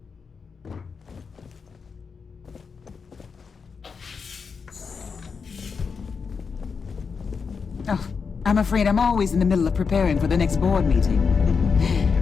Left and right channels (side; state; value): right; quieter; 5.5 dB